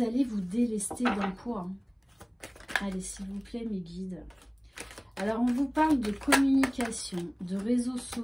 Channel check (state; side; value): identical; both; correlation 1.00